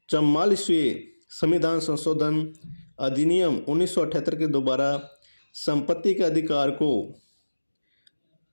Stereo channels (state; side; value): inverted; both; correlation -1.00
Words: 44वें संविधान संशोधन अधिनियम 1978 के दोबारा संपत्ति के अधिकार को